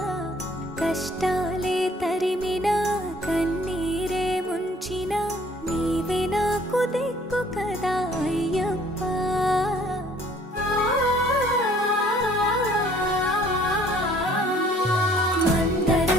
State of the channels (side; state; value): both; normal; correlation 0.57